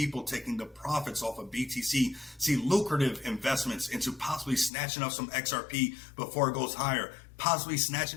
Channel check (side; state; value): right; drops out; at 4.7 s